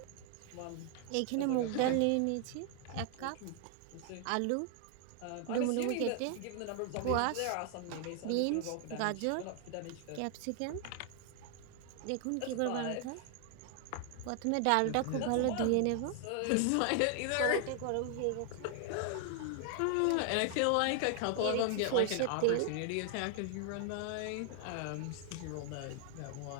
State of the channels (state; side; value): different; both; correlation 0.00